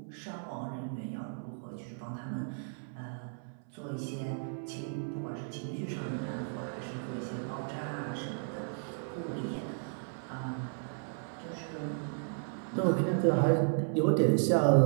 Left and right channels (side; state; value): left; silent; 55 dB below the other